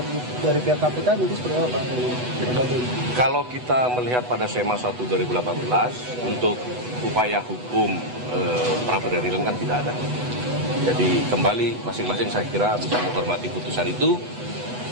dari pihak KPK nanti seperti apa Pak? Kalau kita melihat pada SEMA 1 2018 untuk upaya hukum pra peradilan kan tidak ada. Jadi kembali masing-masing saya kira bisa menghormati putusan itu.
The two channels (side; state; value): left; late; 8.1 ms